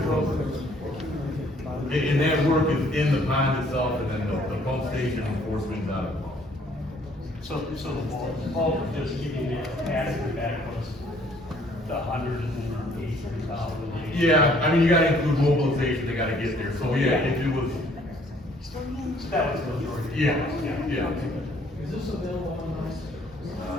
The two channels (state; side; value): normal; both; correlation 0.61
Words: program. And that work is in the pond itself, and then the pump station and force mains out of the pond. So the bulk of just giving the capacity back was the 183,000. Yeah, I mean, you gotta include mobilization, they gotta get there, so yeah, if it was, That was the majority. yeah, yeah. Is this available online? I